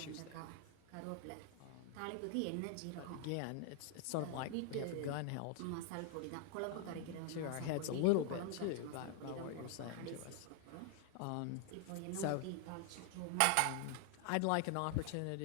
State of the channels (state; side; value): different; both; correlation 0.00